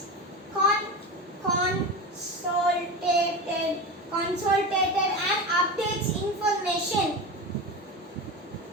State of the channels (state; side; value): normal; both; correlation 0.24